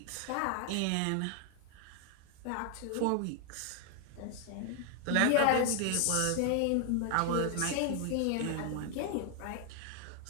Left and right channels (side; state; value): both; different; correlation 0.00